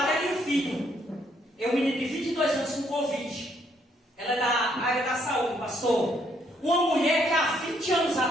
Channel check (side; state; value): both; normal; correlation 0.70